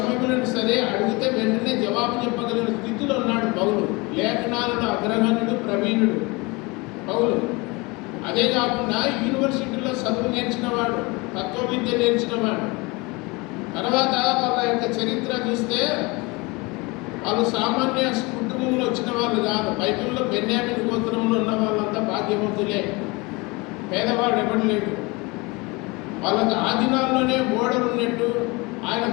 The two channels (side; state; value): right; quieter; 25.7 dB